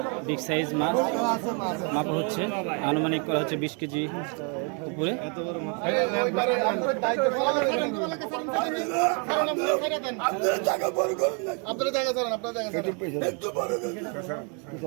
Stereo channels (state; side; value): quieter; left; 37.7 dB